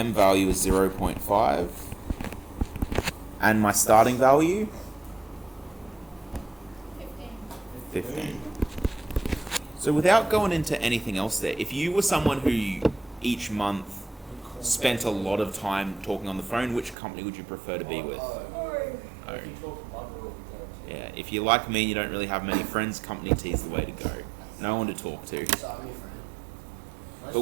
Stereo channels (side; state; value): left; drops out; at 16.9 s